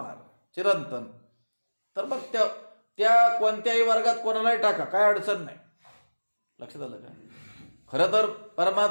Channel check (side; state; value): both; inverted; correlation -1.00